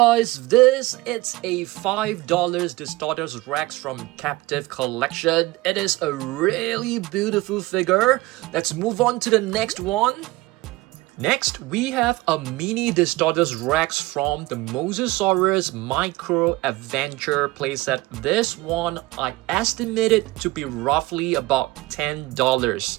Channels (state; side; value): quieter; left; 20.3 dB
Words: this is a $5 Distortus Rex from Captive Collection. It is a really beautiful figure. Let's move on to the next one. Next, we have a mini Distortus Rex from the Mosasaurus Micro Adventure playset. This one, I estimated to be roughly about $10.